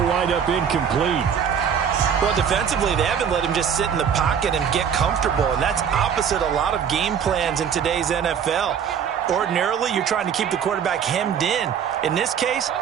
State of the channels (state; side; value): quieter; left; 7.8 dB